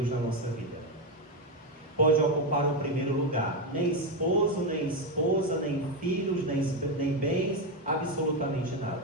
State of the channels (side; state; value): both; normal; correlation 0.08